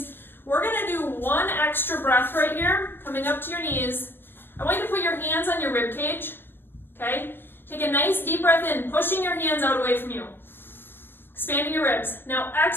We're going to do one extra breath right here, coming up to your knees. I want you to put your hands on your rib cage, okay? Take a nice deep breath in, pushing your hands out away from you. Expanding your ribs. Now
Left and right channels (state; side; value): late; right; 0.099 ms